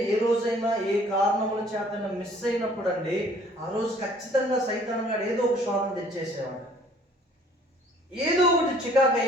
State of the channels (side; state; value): both; normal; correlation 0.56